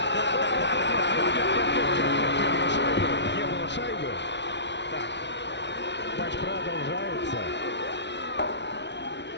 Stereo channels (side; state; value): right; late; 0.51 ms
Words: Не было шайбы. Так, Матч продолжается.